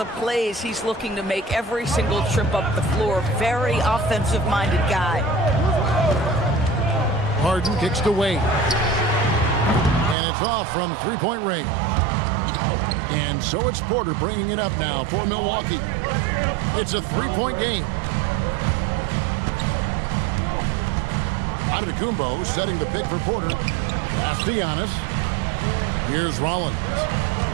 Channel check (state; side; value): drops out; left; at 10.2 s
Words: plays he's looking to make every single trip up the floor. Very offensive-minded guy. Harden kicks to Wade. And it's off from three-point range. And so it's Porter bringing it up now for Milwaukee. It's a three-point game. Antetokounmpo setting the pick for Porter. Pass to Giannis. Here's Rollins.